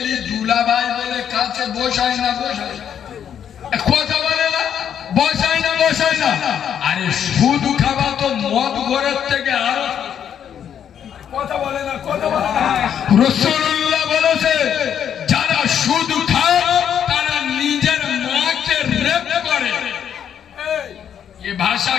দুলাভাই বলে কাছে বসায় না, বসায় কথা বলে না, বসায় না, বসায় না। আরে সুদ খাওয়া তো মদ ঘরের থেকে আরো কথা বলে না, কথা বলে না। রাসূলুল্লাহ বলেছে, যারা সুদ খায় তারা নিজের মাকে রেপ করে। এ ভাষা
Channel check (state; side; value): quieter; right; 8.9 dB